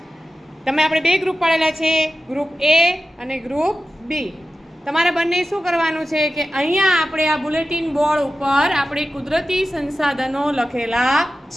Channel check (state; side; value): normal; both; correlation 0.93